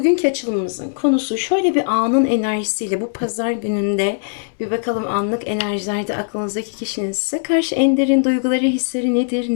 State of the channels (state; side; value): silent; right; digital silence